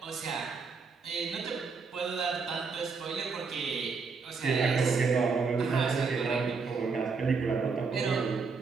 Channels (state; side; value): quieter; left; 4.9 dB